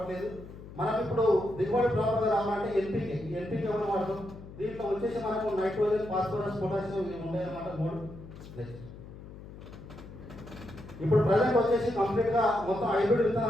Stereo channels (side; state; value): left; noise; hum, 15 dB below the sound